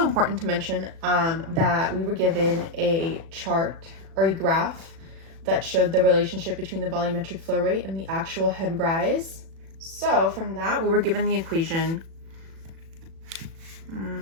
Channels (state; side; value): late; left; 36 ms